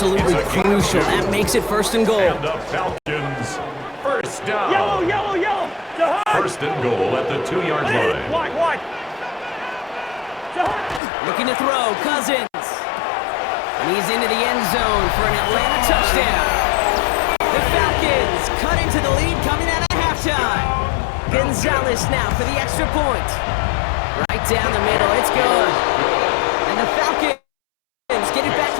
crucial. That makes it 1st and goal. And the Falcons, 1st down. Yellow. 1st and goal at the 2-yard line. White. Looking to throw, Cousins. And he's into the end zone for an Atlanta touchdown. The Falcons cut into the lead coming out of halftime. Gonzalez now for the extra point. Right down the middle, it's good. And the Falcons get it back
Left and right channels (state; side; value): drops out; right; at 11.0 s